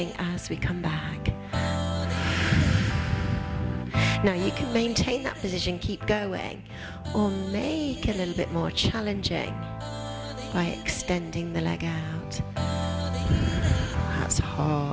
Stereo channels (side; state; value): both; identical; correlation 1.00